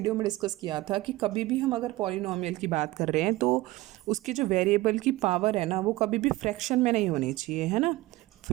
में डिस्कस किया था कि कभी भी हम अगर पॉलिनॉमियल की बात कर रहे हैं तो उसकी जो वेरिएबल की पावर है ना, वो कभी भी फ्रैक्शन में नहीं होनी चाहिए, है ना।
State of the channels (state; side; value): quieter; left; 18.9 dB